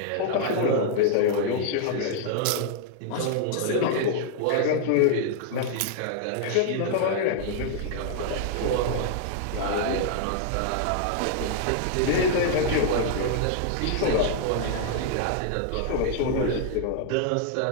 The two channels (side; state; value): both; different; correlation -0.01